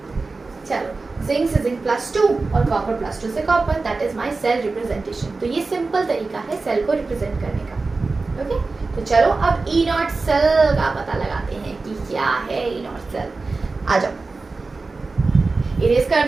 चलो, जिंक से जिंक +2 और कॉपर +2 से copper, that is my cell representation. तो ये सिंपल तरीका है सेल को रिप्रेजेंट करने का, ओके। तो चलो अब ई नॉट सेल का पता लगाते हैं कि क्या है ई नॉट सेल। आ जाओ, इरेज कर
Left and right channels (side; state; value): left; quieter; 3.8 dB